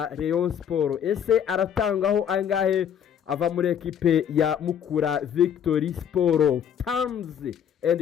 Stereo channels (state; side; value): quieter; right; 8.7 dB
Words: Rayon Sport. Ese aratangaho angahe ava muri ekipe ya Mukura Victory Sport? Terms